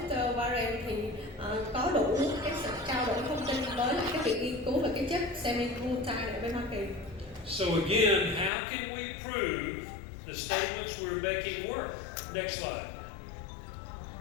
Warren thì có đủ cái sự trao đổi thông tin với lại cái viện nghiên cứu về cái chất semi-glutide ở bên Hoa Kỳ. So again, how can we prove the statements we're making work? Next slide.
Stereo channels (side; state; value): right; drops out; at 8.5 s